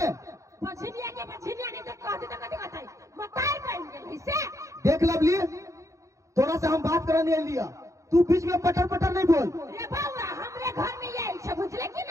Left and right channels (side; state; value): left; late; 0.15 ms